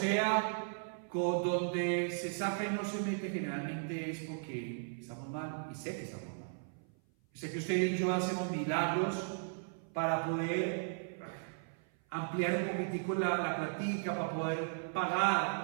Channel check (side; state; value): left; silent; 54 dB below the other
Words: con donde se saca y no se mete generalmente es porque estamos mal, y sé que estamos mal. Sé que usted y yo hacemos milagros para poder ampliar un poquitico la platica, para poder